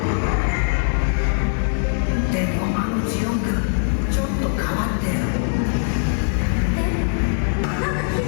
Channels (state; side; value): silent; right; digital silence